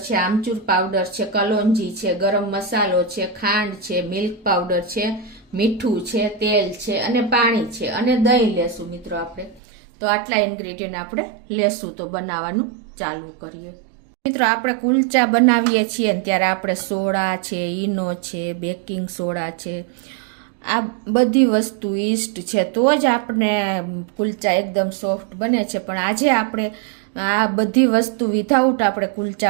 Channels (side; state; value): left; drops out; at 9.6 s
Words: છે, આમચૂર પાવડર છે, કલોંજી છે, ગરમ મસાલો છે, ખાંડ છે, મિલ્ક પાવડર છે, મીઠું છે, તેલ છે અને પાણી છે અને દહીં લેશું મિત્રો આપણે। તો આટલા ઇન્ગ્રેડિયન્ટ આપણે લેશું। તો બનાવવાનું ચાલુ કરીએ। મિત્રો, આપણે કુલચા બનાવીએ છીએ ને ત્યારે આપણે સોડા છે, ઈનો છે, બેકિંગ સોડા છે, આ બધી વસ્તુ ઈસ્ટ છે તો જ આપણે કુલચા એકદમ સોફ્ટ બને છે। પણ આજે આપણે આ બધી વસ્તુ વિધાઉટ આપણે